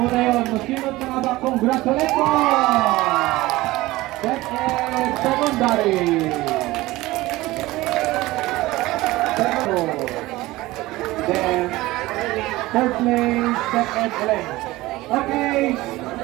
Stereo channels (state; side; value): quieter; left; 18.8 dB